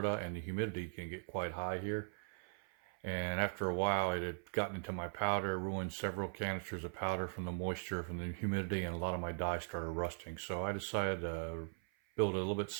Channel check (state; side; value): silent; left; 51 dB below the other